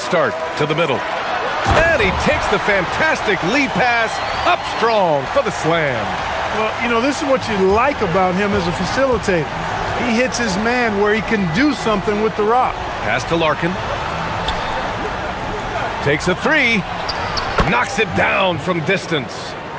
start to the middle. And he takes the fantastic lead pass up strong for the slam. Well, you know, this is what you like about him as a facilitator. He hits his man where he can do something with the rock. Pass to Larkin. Takes a 3. Knocks it down from distance.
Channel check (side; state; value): both; identical; correlation 1.00